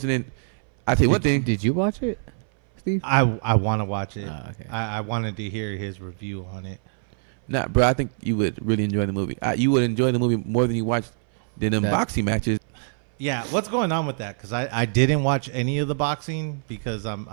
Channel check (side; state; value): left; silent; 60 dB below the other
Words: and then I tell you one thing. Did you watch it, Steve? I want to watch it. Oh, okay. I wanted to hear his review on it. Nah, bro, I think you would really enjoy the movie. You would enjoy the movie more than you watched the boxing matches. Yeah, what's going on with that? Because I didn't watch any of the boxing because